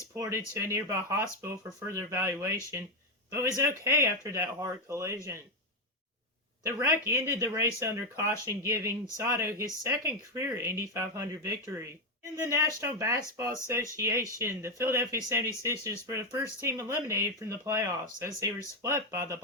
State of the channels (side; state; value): both; normal; correlation 0.06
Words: to a nearby hospital for further evaluation, but was okay after that hard collision. The wreck ended the race under caution, giving Sato his 2nd career Indy 500 victory. In the National Basketball Association, the Philadelphia 76ers were the first team eliminated from the playoffs as they were swept by the